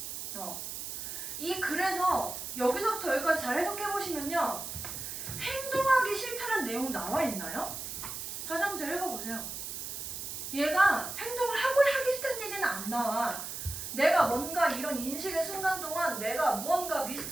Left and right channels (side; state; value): right; noise; hiss, 6 dB below the sound